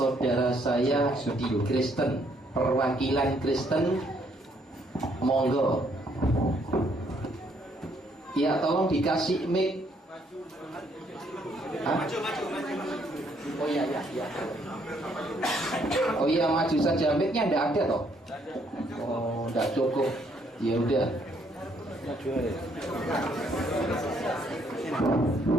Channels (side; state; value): both; normal; correlation 0.69